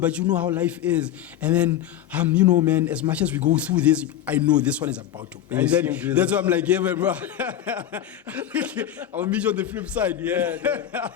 but you know how life is." And then, man, as much as we go through this, I know this one is about to. And then that's why I'm like, "Yeah, man, bro, I'll meet you on the flip side."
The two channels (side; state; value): right; quieter; 11.2 dB